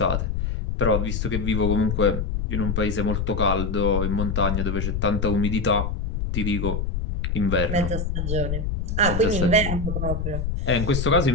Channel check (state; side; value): noise; left; rumble, 1 dB below the sound